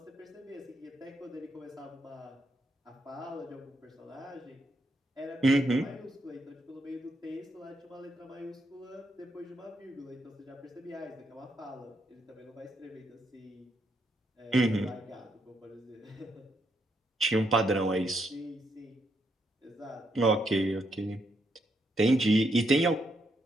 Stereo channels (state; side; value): normal; both; correlation 0.78